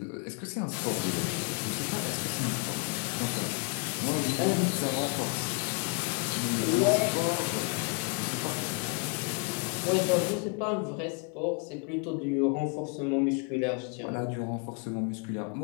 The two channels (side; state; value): right; quieter; 31.8 dB